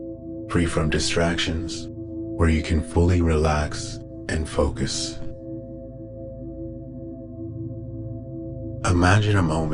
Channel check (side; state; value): both; identical; correlation 1.00